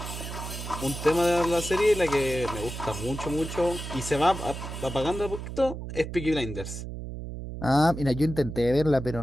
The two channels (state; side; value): noise; right; hum, 8 dB below the sound